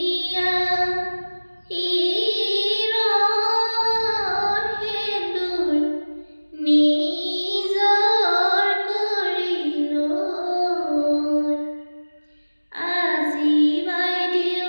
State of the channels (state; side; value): inverted; both; correlation -1.00